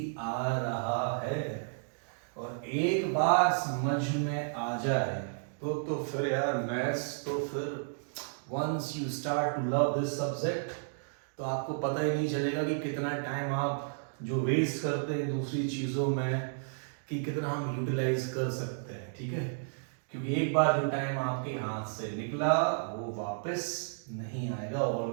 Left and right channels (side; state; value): left; silent; digital silence